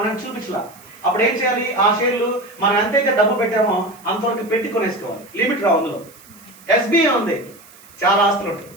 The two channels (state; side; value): noise; right; hiss, 24 dB below the sound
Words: చూపించలా. అప్పుడు ఏం చేయాలి? ఆ షేర్లు మనం ఎంతైతే డబ్బు పెట్టామో అంతవరకు పెట్టి కొనేసుకోవాలి. లిమిట్ రావు అందులో. ఎస్బీఐ ఉంది, చాలా ఆస్తులు ఉంటాయి.